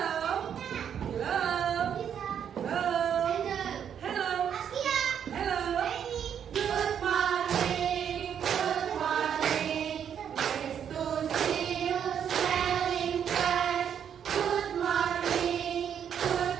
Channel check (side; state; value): left; quieter; 8.5 dB